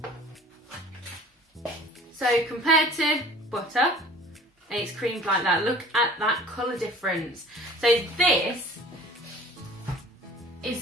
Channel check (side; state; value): both; normal; correlation 0.47